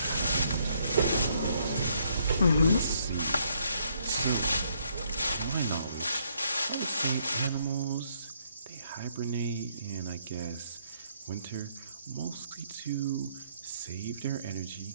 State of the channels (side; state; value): both; inverted; correlation -0.71